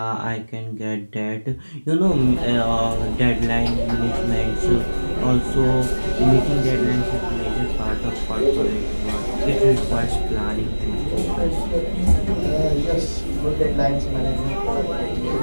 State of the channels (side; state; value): both; inverted; correlation -1.00